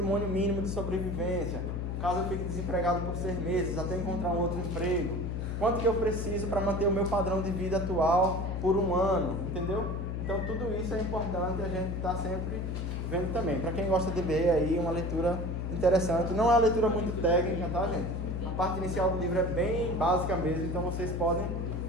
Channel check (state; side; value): noise; left; hum, 2 dB below the sound